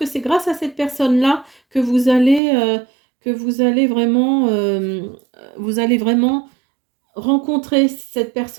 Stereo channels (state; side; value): drops out; left; at 2.4 s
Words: c'est grâce à cette personne-là que vous allez vraiment rencontrer cette